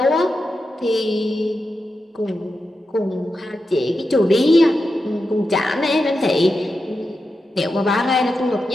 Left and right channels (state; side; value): normal; both; correlation 0.89